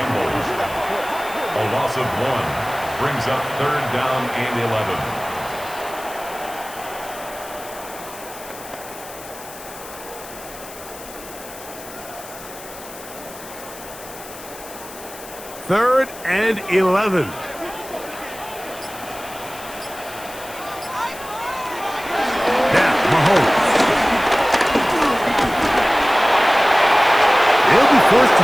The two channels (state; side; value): noise; left; hiss, 16 dB below the sound